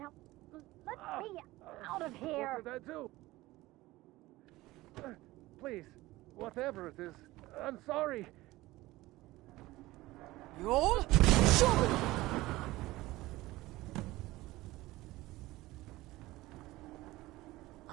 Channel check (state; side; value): quieter; left; 18.5 dB